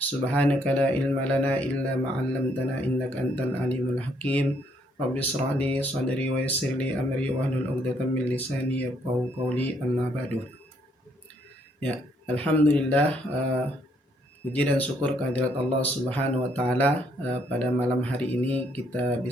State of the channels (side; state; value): both; normal; correlation 0.69